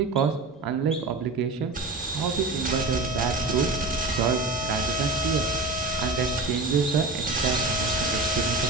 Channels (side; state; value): left; quieter; 3.4 dB